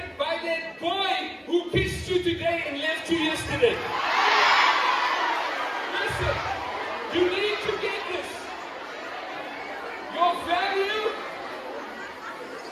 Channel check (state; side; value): identical; both; correlation 1.00